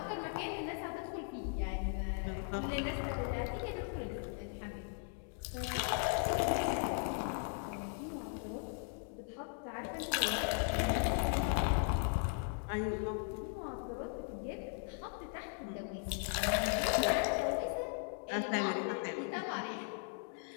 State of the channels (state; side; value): silent; right; 52 dB below the other